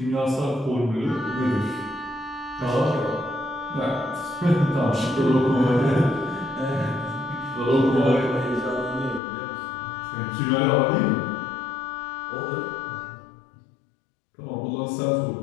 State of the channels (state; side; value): drops out; right; at 9.2 s